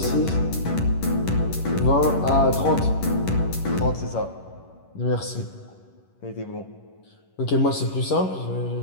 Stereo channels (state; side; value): late; right; 11 ms